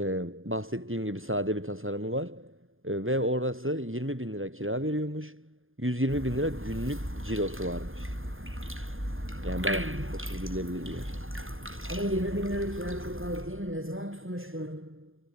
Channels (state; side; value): late; left; 0.59 ms